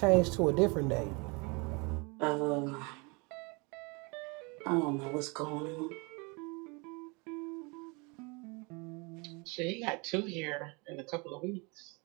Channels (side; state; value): left; quieter; 29.8 dB